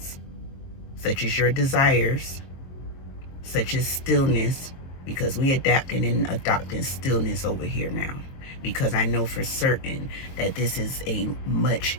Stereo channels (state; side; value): late; right; 22 ms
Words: such as your desires, such as stillness, because we adapting and adopting stillness over here now, because I know for certain that this is a much